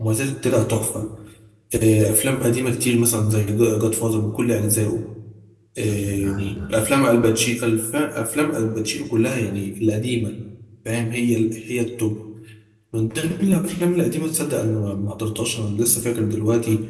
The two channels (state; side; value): identical; both; correlation 1.00